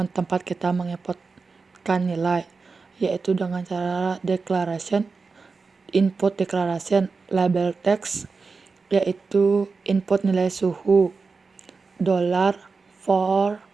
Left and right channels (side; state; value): left; quieter; 4.5 dB